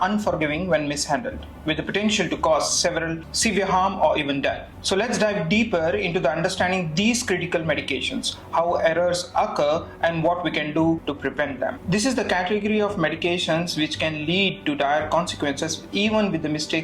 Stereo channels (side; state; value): both; identical; correlation 1.00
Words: unforgiving when mishandled, with the potential to cause several severe harm or even death. So let's dive deeper into the understanding these critical medications, how errors occur, and what we can do to prevent them. This is the category of medications which can lead to dire consequences even with the